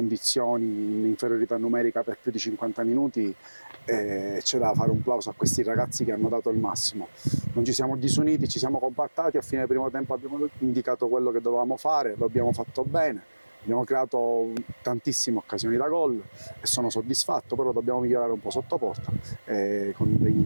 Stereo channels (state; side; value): inverted; both; correlation -1.00